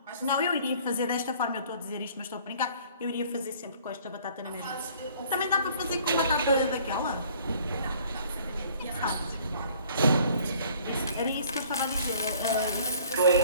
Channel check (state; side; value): inverted; both; correlation -0.55